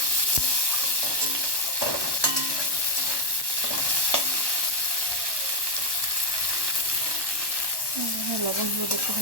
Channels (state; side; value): late; left; 1.1 ms